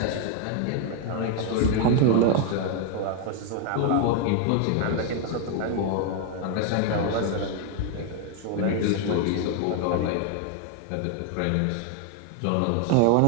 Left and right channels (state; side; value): different; both; correlation 0.00